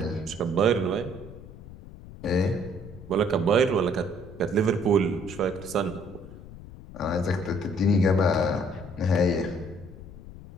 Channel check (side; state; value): left; noise; rumble, 16 dB below the sound